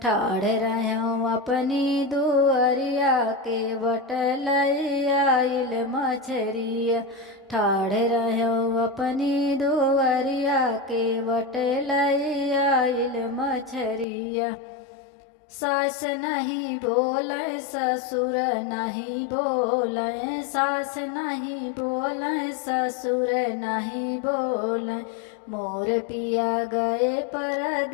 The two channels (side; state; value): right; drops out; at 14.1 s